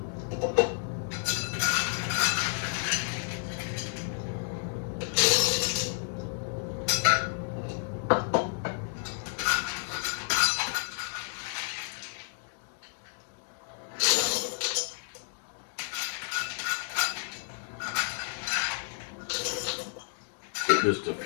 Put just a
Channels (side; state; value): right; silent; digital silence